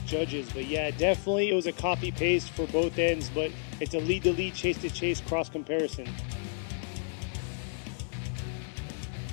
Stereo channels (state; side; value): silent; right; 57 dB below the other